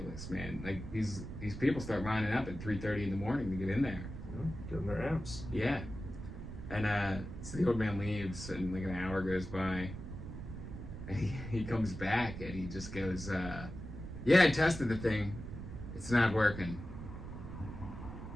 man. Like these people start lining up at 3:30 in the morning to get in there. Yeah, getting their amps. Yeah. And so the old man leaves, and like an hour goes by, and he comes back, and he just goes, yeah, I tested the thing. It's not working.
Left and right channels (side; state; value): right; noise; rumble, 9 dB below the sound